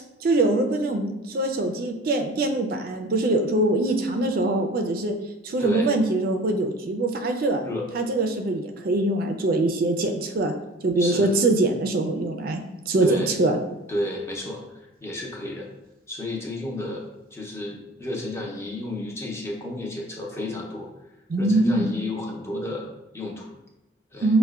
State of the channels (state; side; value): normal; both; correlation 0.44